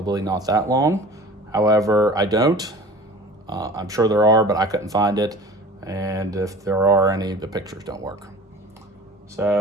not that long. However, I don't. I'm sure there are, but I couldn't find it. And if there are any, the pictures don't work.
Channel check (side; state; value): both; normal; correlation 0.42